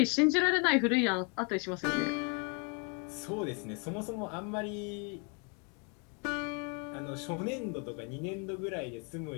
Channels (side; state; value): right; quieter; 35.6 dB